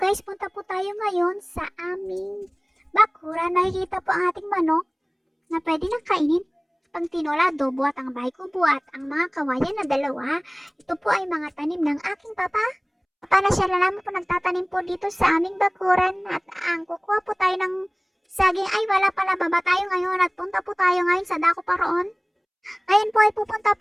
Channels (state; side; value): identical; both; correlation 1.00